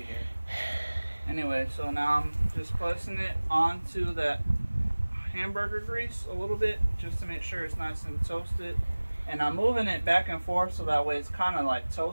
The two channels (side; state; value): both; inverted; correlation -1.00